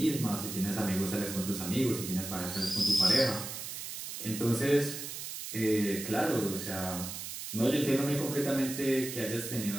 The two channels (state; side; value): noise; right; hiss, 7 dB below the sound